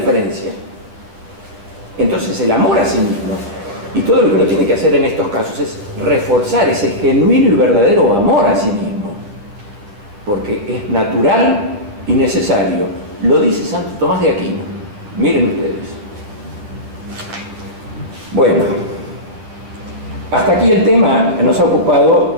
Entonces el amor a sí mismo, y todo lo que uno tiene que hacer en estos casos es reforzar ese genuino y verdadero amor a sí mismo, porque es natural y necesario. Lo dice Santo Tomás de Aquino. Miren ustedes. Bueno, hasta aquí el tema nos ha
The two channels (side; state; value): left; late; 9.9 ms